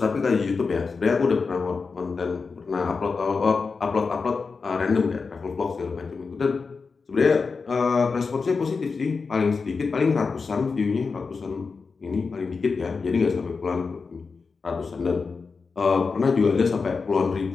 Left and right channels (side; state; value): right; quieter; 4.7 dB